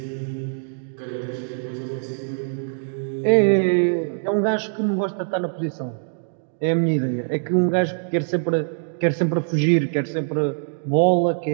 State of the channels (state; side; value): silent; left; digital silence